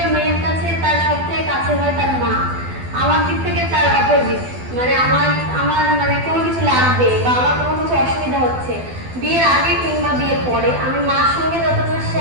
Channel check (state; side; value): late; left; 12 ms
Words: মেয়ের কাছে তার সবথেকে কাছে হয় তার মা। আমার দিক থেকে তার অপোজিট, মানে আমার আমার মানে কোনো কিছু লাগবে বা আমার কোনো কিছু অসুবিধা হচ্ছে বিয়ের আগে কিংবা বিয়ের পরে, আমি মার সঙ্গে যতটা